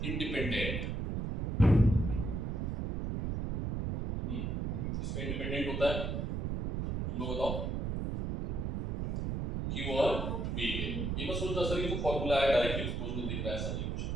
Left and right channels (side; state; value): right; noise; rumble, 1 dB below the sound